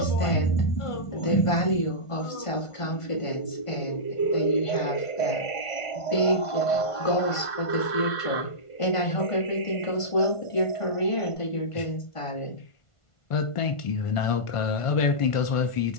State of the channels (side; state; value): right; late; 1.5 ms